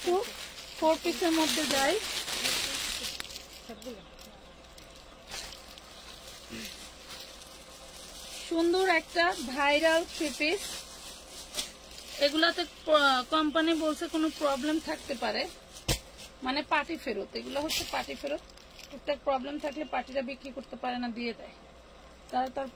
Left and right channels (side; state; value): both; identical; correlation 1.00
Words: 4 পিসের মধ্যে যাই। সুন্দর একটা ভাইরাল 3 পিস, এগুলাতে কোম্পানি বলছে কোনো প্রবলেম থাকতে পারে, মানে পার্টি ফেরত। এগুলো হচ্ছে পার্টি ফেরত, টুকটাক প্রবলেম থাকলে পার্টিরা বিক্রি করতে পারে না, দিয়ে দেয় তারা তার